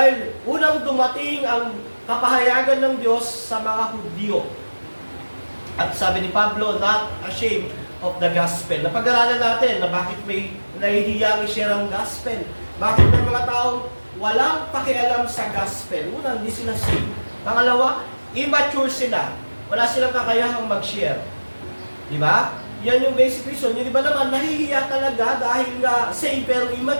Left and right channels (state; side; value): inverted; both; correlation -1.00